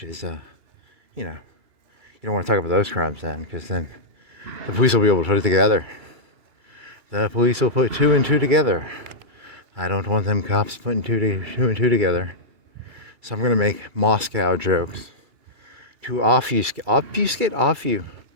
is, you don't want to talk about those crimes then, because then the police will be able to put it together. The police will put two and two together. I don't want them cops putting two and two together. So I'm going to make Moscow jokes to obfuscate off you.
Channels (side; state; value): left; late; 2.1 ms